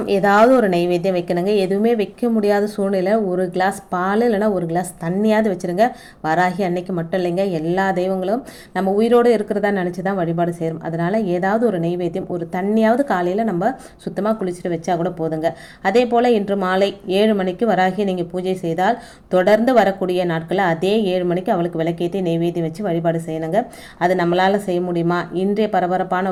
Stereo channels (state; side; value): identical; both; correlation 1.00